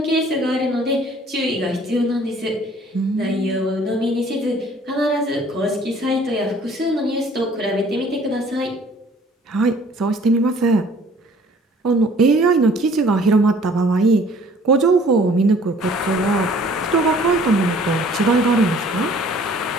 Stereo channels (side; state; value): both; normal; correlation 0.55